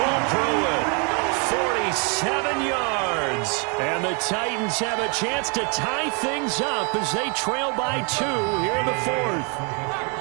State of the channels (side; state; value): left; quieter; 35.1 dB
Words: Pruitt, 47 yards. And the Titans have a chance to tie things up as they trail by 2 here in the 4th.